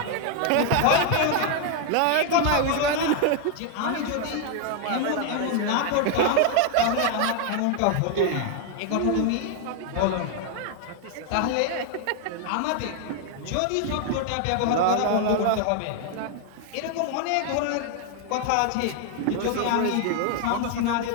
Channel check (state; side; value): different; both; correlation 0.00